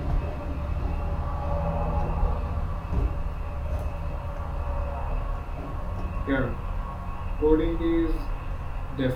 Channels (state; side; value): identical; both; correlation 1.00